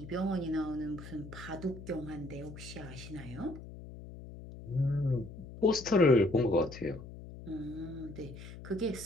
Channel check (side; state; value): left; noise; hum, 13 dB below the sound